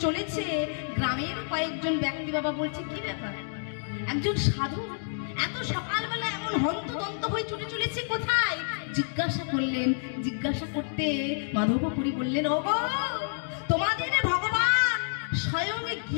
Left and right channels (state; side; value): silent; right; digital silence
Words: চলেছে, গ্রামের কয়েকজন ব্যক্তি বাবা বলছে, কি ব্যাপার, একজন সাধু এত সকালবেলা এমন হন্তদন্ত হয়ে ছুটে চলেছে কোথায়? জিজ্ঞাসা করলেন। জিজ্ঞাসা করতে মাধবপুরী বললেন, ওগো, তোমাদের ভগবান স্বয়ং